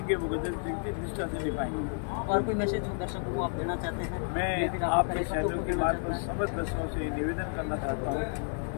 वो गजेंद्र सिंह जी निष्ठा से निभाएंगे। और कोई मैसेज दर्शकों को आप देना चाहते हैं? मैं आपके चैनल के मार्ग पर समस्त दर्शकों से निवेदन करना चाहता हूँ,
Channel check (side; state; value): right; silent; 57 dB below the other